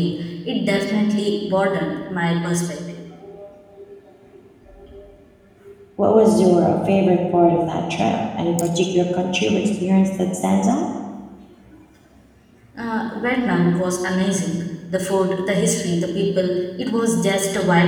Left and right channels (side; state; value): both; identical; correlation 1.00